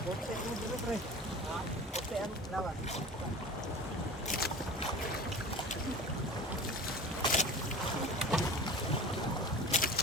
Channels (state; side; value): normal; both; correlation 0.37